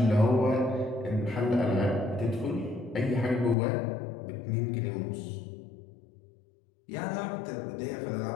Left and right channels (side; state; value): right; drops out; at 3.6 s